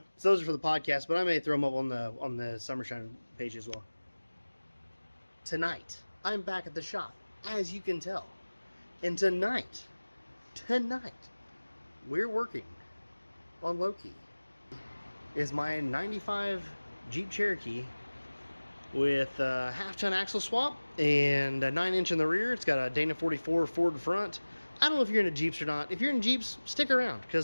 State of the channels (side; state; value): both; inverted; correlation -1.00